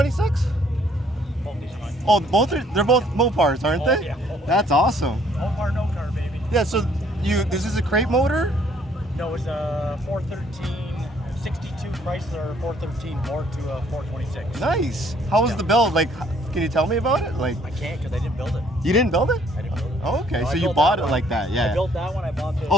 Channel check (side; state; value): both; normal; correlation 0.63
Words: Both these ones. Oh, they're both Mopars, aren't they? Yeah. That's awesome. Mopar, no car, baby. Yeah, so this is a crate motor? No, it's a 413, 62 Chrysler 413 bored to a 426. Nice. How was the build? Like, can you tell me about it? Like, I can't because I didn't build it. you didn't build it? I didn't build it. Oh, okay. No, So I you built bought that it one. like that, yeah. I built that one. I bought this.